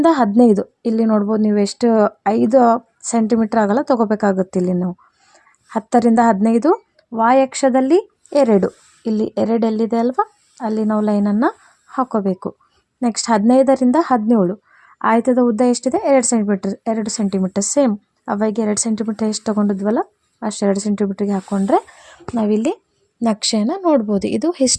15, ಇಲ್ಲಿ ನೋಡ್ಬೋದು ನೀವು ಎಷ್ಟು 5 ಸೆಂಟಿಮೀಟ್ರ್ ಆಗಲ್ಲ ತೊಗೋಬೇಕಾಗುತ್ತೆ. ಇಲ್ಲಿ ನಾವು 10ರಿಂದ 15 ವಾಯಕ್ಷದಲ್ಲಿ 2, ಇಲ್ಲಿ 2 ಎಲ್ಲಿದೆ ಅಲ್ವಾ ಅಲ್ಲಿ ನಾವು ಲೈನನ್ನು ಹಾಕೋಬೇಕು. ನೆಕ್ಸ್ಟ್ 15ರಿಂದ 17 ಆಯತದ ಉದ್ದ ಎಷ್ಟಿದೆ 2 ಸೆಂಟಿಮೀಟ್ರ್ ಸೇಮ್ ಅವಾಗ 2 ಸೆಂಟಿಮೀಟ್ರ್ ಎಷ್ಟು ತೊಗೊಂಡಿದ್ವಲ್ಲ ಅಷ್ಟು 2 ಸೆಂಟಿಮೀಟ್ರಿಗೆ ಹಾಕ್ಕೊಂಡ್ರೆ ನಾವಿಲ್ಲಿ ನಕ್ಷೆಯನ್ನು ನೋಡ್ಬೋದು. ಇದು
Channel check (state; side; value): identical; both; correlation 1.00